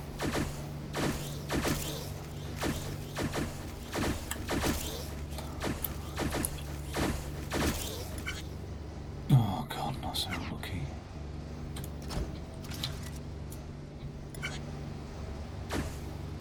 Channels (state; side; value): identical; both; correlation 1.00